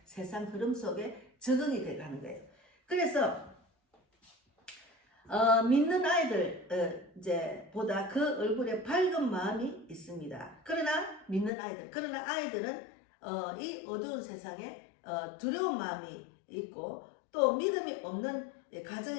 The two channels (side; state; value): right; drops out; at 11.5 s